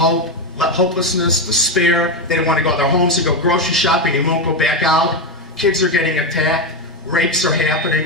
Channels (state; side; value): normal; both; correlation 0.10